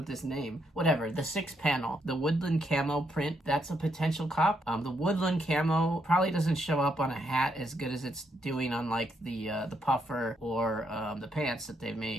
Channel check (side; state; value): both; normal; correlation 0.77